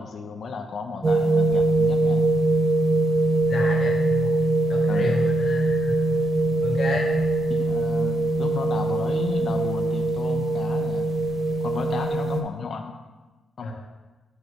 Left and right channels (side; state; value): both; normal; correlation 0.79